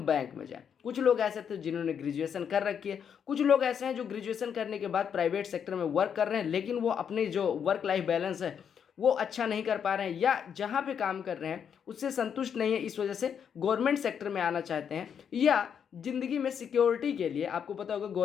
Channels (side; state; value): right; quieter; 7.7 dB